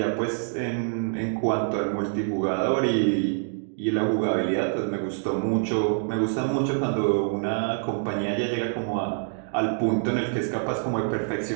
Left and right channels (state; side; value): silent; left; 61 dB below the other